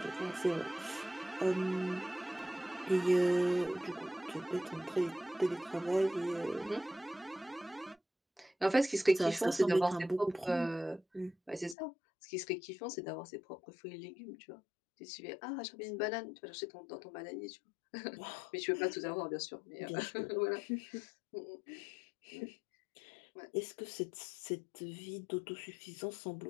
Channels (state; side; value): drops out; right; at 11.8 s